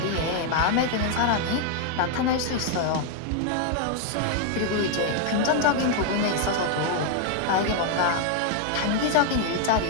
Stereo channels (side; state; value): both; different; correlation 0.00